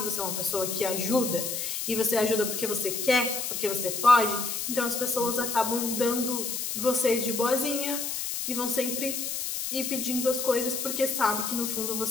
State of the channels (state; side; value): noise; left; hiss, 3 dB below the sound